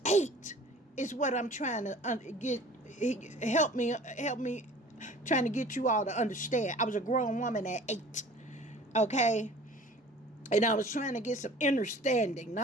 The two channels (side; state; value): both; normal; correlation 0.45